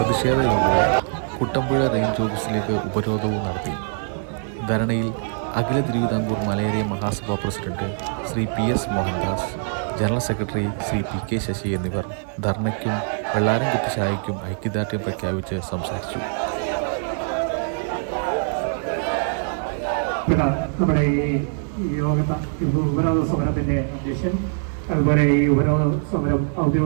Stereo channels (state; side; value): silent; left; 63 dB below the other